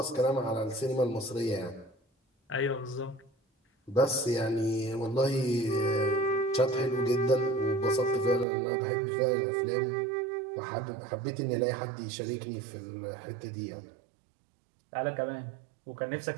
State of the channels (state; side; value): drops out; left; at 8.5 s